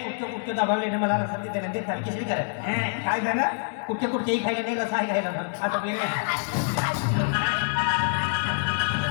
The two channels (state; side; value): silent; right; 60 dB below the other